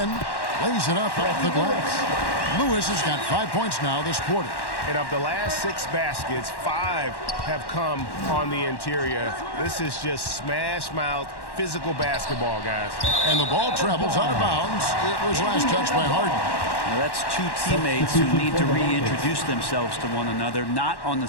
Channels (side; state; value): right; late; 1.1 ms